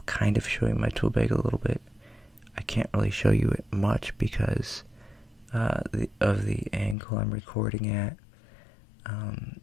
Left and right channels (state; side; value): drops out; right; at 7.0 s